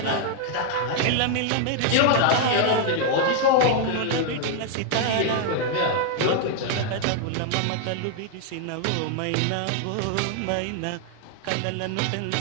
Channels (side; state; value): both; different; correlation 0.00